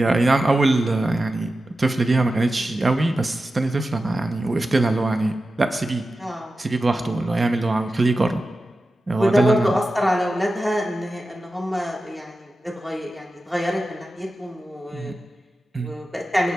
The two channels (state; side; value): normal; both; correlation 0.93